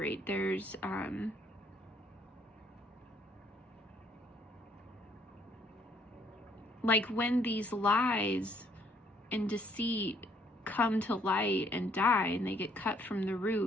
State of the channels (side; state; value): both; normal; correlation 0.65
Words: There's like, when these lies and deceit come to light and die and they get cut from the